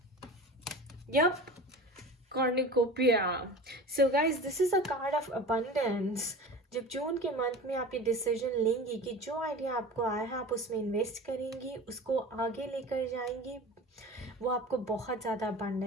Yup, Cornucopia. So guys, this is a card of abundance. जब जून के मंथ में आप ये डिसीजन लेंगी कि जो आइडिया आपको आया है आप उसमें इन्वेस्ट करेंगी, उसको आगे लेकर जाएंगी, वो आपको बहुत ज़्यादा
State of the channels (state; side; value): normal; both; correlation 0.35